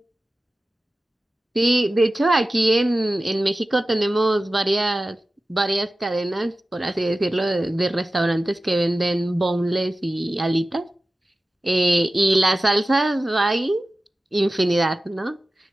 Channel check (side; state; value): both; normal; correlation 0.95